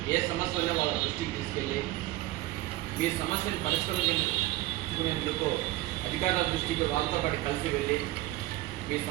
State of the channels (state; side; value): quieter; left; 17.1 dB